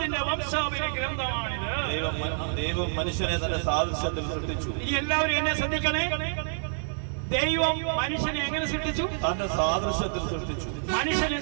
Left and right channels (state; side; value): silent; left; 60 dB below the other